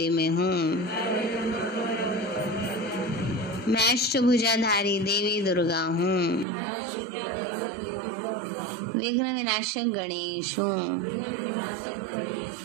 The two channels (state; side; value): drops out; left; at 6.5 s